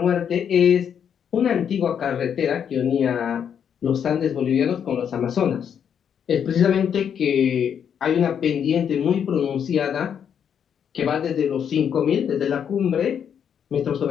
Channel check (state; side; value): quieter; right; 8.2 dB